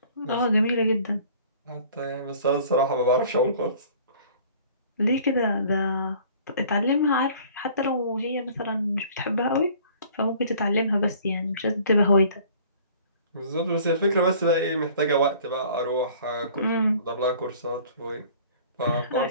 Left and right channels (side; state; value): both; inverted; correlation -0.51